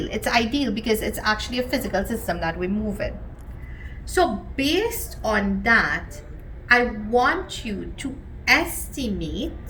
It's ideal because it's actually a physical system that we're moving. So based on that, I want you to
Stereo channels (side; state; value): both; identical; correlation 1.00